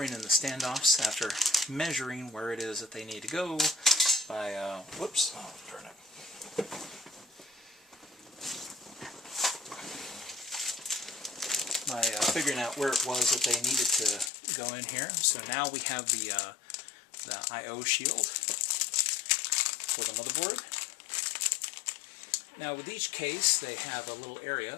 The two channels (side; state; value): right; drops out; at 14.3 s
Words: in the standoffs after measuring where it is that they need to go by, whoops, oh darn it. By figuring out where it was that they needed to go in here. So now we have the I/O shield for the motherboard. Now with each case they have a little area,